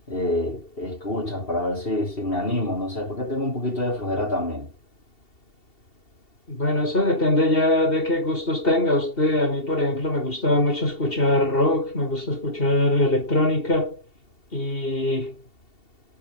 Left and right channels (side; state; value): right; late; 2.7 ms